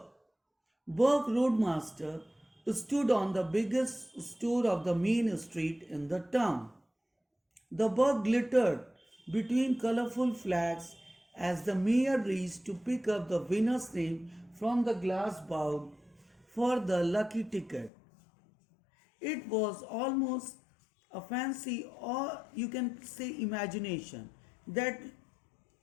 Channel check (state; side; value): drops out; right; at 17.9 s